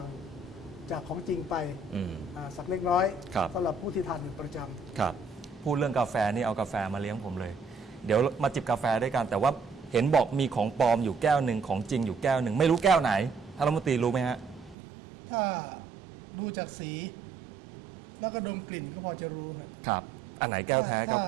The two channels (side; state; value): left; drops out; at 14.8 s